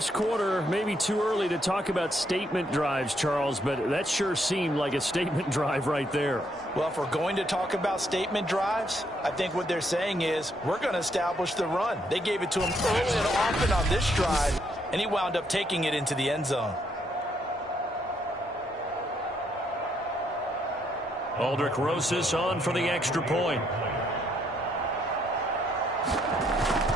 quarter, maybe too early to talk about statement drives, Charles, but that sure seemed like a statement drive right there. Well, if we're going to talk about statement drives, I think what they're saying is we're going to establish the run. They gave it to him early and often on this drive, and he wound up taking it into the end zone. Aldrich Rosas on for the extra point.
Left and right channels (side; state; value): both; normal; correlation 0.73